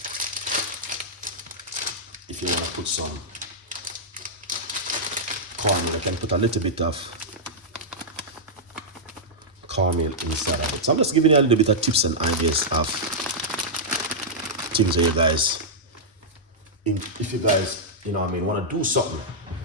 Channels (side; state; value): both; normal; correlation -0.09